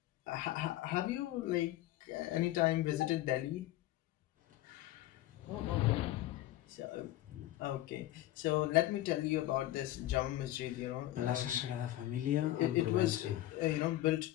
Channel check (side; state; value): right; quieter; 15.1 dB